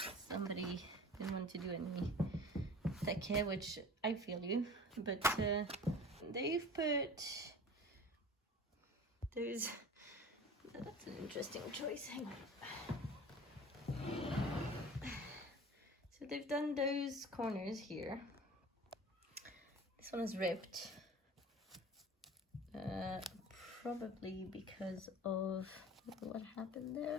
Somebody didn't want to do any take, which I feel you, but they've put those, that's an interesting choice, hang on. So they've done those corners here. This one is ripped, probably because of what happened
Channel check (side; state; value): both; normal; correlation 0.40